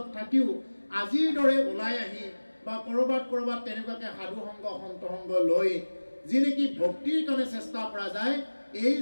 থাকিও আজিৰ দৰে ওলাই আহি বা কৰবাত তেনেকুৱাকে সাধু সংগ সন্ত সংগ লৈ যি নেকি ভক্তিৰ কাৰণে চেষ্টা কৰা যায়, এই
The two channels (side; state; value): both; inverted; correlation -1.00